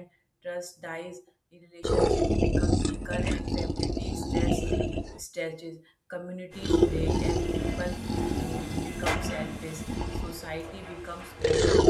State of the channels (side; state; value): both; identical; correlation 1.00